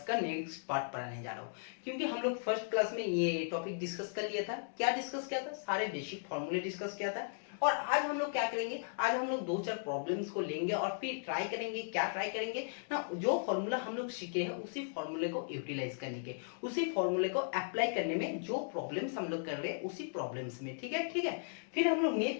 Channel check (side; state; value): right; silent; digital silence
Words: का नेक्स्ट पार्ट पढ़ाने जा रहा हूं, क्योंकि हम लोग फर्स्ट क्लास में ये टॉपिक डिस्कस कर लिया था। क्या डिस्कस किया था? सारे बेसिक फॉर्मूले डिस्कस किया था। और आज हम लोग क्या करेंगे? आज हम लोग दो चार प्रॉब्लम्स को लेंगे और फिर ट्राई करेंगे। क्या ट्राई करेंगे ना, जो फॉर्मूला हम लोग सीखे हैं उसी फॉर्मूले को यूटिलाइज करने के, उसी फॉर्मूले को अप्लाई करने में जो प्रॉब्लम्स हम लोग कर रहे हैं उसी प्रॉब्लम्स में। ठीक है, ठीक है। फिर हम लोग